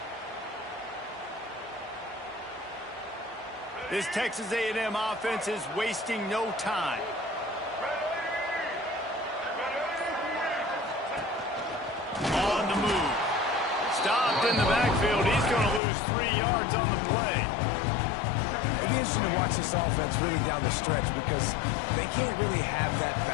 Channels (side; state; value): right; drops out; at 15.8 s